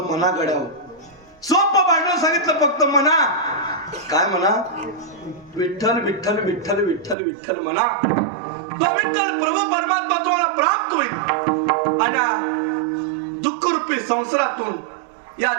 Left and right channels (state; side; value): drops out; left; at 7.2 s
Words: मना घडावं. सोपं भांडवल सांगितलं फक्त मना. काय म्हणा? विठ्ठल विठ्ठल विठ्ठल विठ्ठल विठ्ठल म्हणा. तो विठ्ठल प्रभू परमात्मा तुम्हाला प्राप्त होईल आणि दुःख रूपी संसारातून या